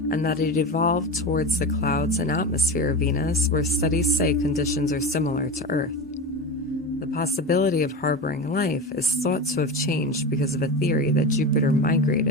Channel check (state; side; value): normal; both; correlation 0.24